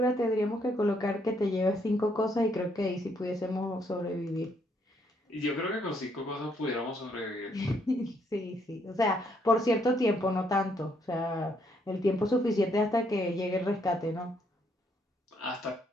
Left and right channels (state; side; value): normal; both; correlation 0.72